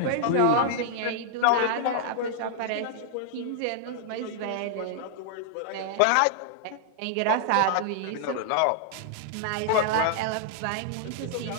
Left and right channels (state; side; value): different; both; correlation -0.01